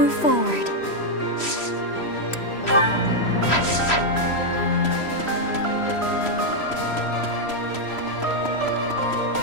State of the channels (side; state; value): right; late; 3.0 ms